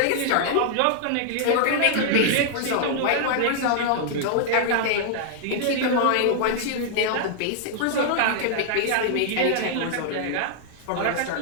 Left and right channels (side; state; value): both; different; correlation -0.01